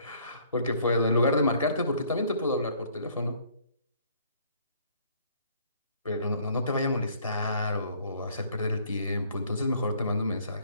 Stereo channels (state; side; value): inverted; both; correlation -0.60